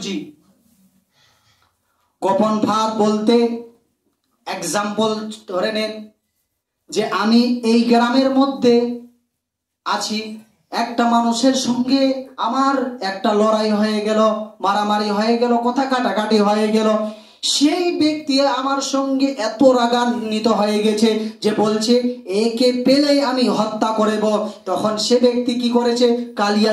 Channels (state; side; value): identical; both; correlation 1.00